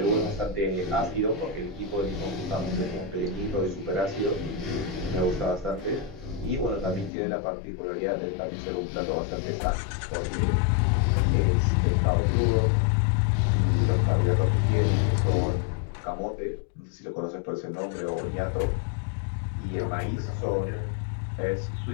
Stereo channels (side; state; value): right; drops out; at 7.1 s